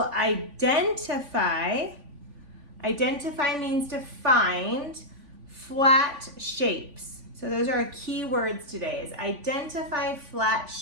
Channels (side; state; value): left; late; 3.5 ms